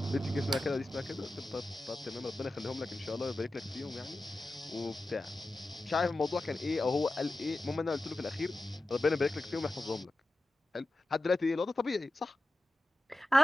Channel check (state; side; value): normal; both; correlation 0.94